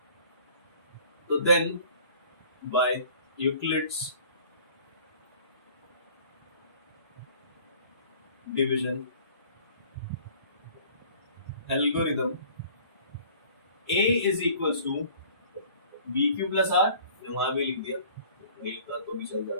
तो then by Euclid's division algorithm a is equals to bq plus r, वहां भी लिख दिया, नहीं लिखा तो भी चल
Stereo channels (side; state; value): both; inverted; correlation -0.51